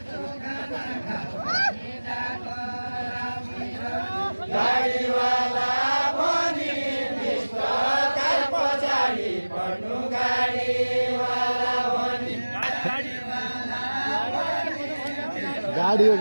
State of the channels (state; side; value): inverted; both; correlation -1.00